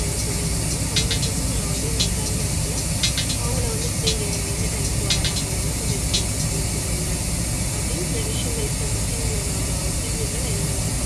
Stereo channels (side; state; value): both; identical; correlation 1.00